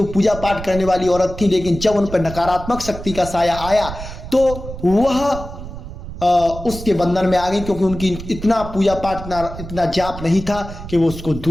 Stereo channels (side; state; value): right; noise; rumble, 11 dB below the sound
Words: पूजा पाठ करने वाली औरत थी, लेकिन जब उन पर नकारात्मक शक्ति का साया आया तो वह उसके बंधन में आ गई, क्योंकि उनकी इतना पूजा पाठ, इतना जाप नहीं था कि वो उसको